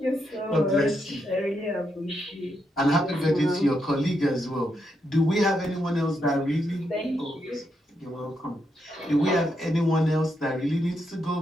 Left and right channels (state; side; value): normal; both; correlation 0.81